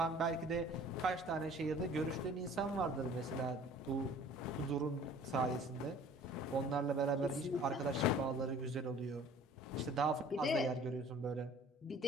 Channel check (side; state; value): both; normal; correlation 0.49